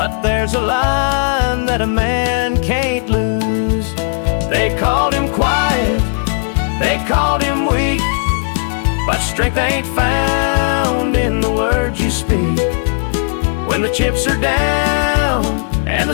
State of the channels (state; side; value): silent; right; digital silence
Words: there's a line that a man can't lose. They called him quiet, they called him weak, but strength ain't found in the words you speak. When the chips are down and the